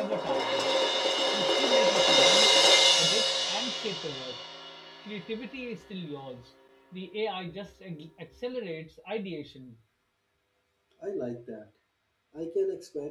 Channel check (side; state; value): both; identical; correlation 1.00